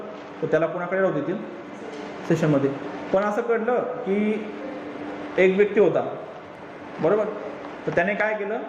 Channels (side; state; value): both; identical; correlation 1.00